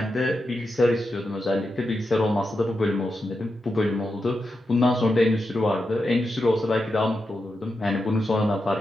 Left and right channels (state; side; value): normal; both; correlation 0.88